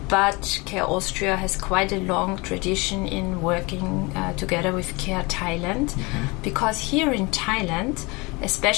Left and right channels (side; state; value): right; quieter; 26.1 dB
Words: but CARE Austria has quite a long tradition in working together with CARE Thailand, because here in Thailand,